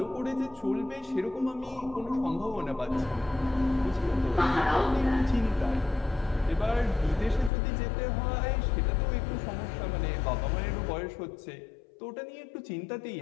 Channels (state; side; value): drops out; right; at 7.5 s